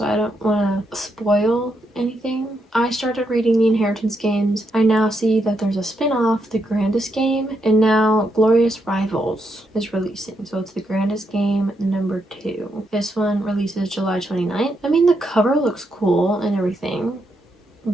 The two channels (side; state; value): both; normal; correlation 0.80